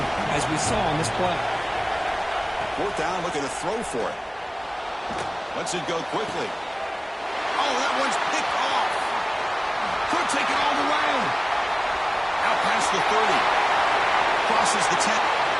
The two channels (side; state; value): both; identical; correlation 1.00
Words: as we saw on this play. 4th down, looking to throw for it. Lets it go quickly. Oh, that one's picked off. Could take it all the way. Out past the 30. Crosses the 10.